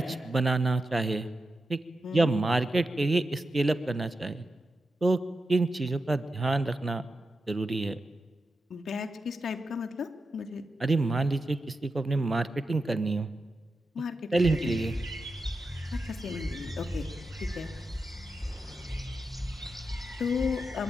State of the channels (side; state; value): both; normal; correlation 0.89